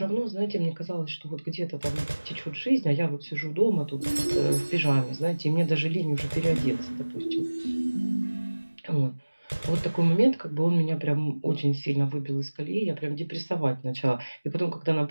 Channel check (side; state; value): both; inverted; correlation -1.00